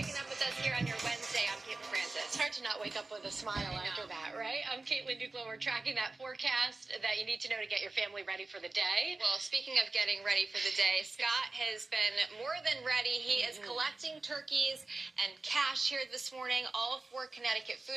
up with us here on your Wednesday. I'm Caitlin Francis. It's hard to not wake up with a smile after that, right? I'm Caitlin Duclo. We're tracking that forecast that you need to know to get your family ready for the day. Well, speaking of getting ready for the day, Scott has been more than ready. He is collecting turkeys and cash here this morning, all for Connecticut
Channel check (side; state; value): left; quieter; 3.4 dB